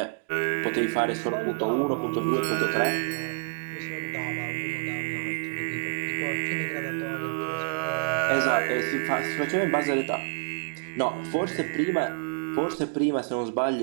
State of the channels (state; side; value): silent; left; digital silence